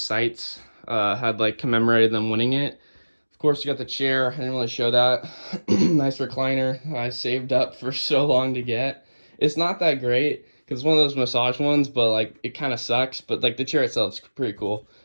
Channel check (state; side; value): inverted; both; correlation -1.00